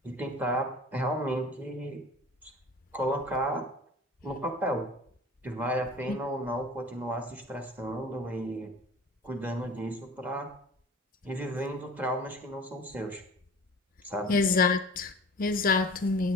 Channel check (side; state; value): both; normal; correlation 0.42